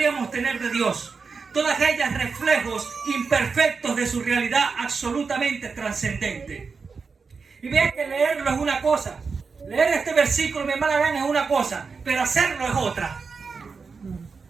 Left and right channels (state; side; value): quieter; left; 5.0 dB